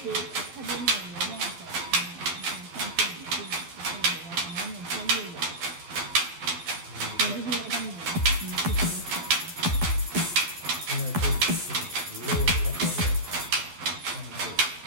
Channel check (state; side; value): late; left; 12 ms